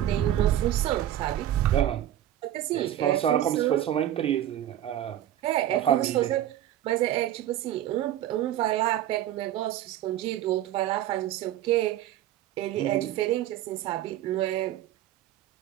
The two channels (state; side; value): quieter; left; 12.3 dB